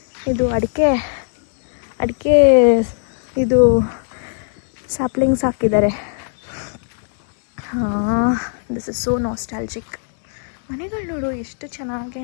ಇದು ಅಡಿಕೆ ಇದು ಸ್ಯಾಪ್ಲಿಂಗ್ಸ್ ಹಾಕಿದ್ದಾರೆ. This is so nostalgic. ಮನೆಗಳು ನೋಡು ಎಷ್ಟು ಚೆನ್ನಾಗಿ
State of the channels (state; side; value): silent; right; 64 dB below the other